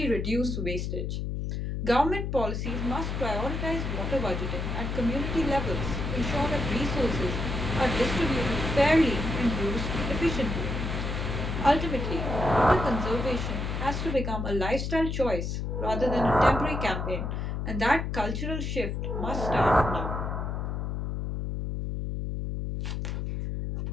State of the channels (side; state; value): left; noise; hum, 3 dB below the sound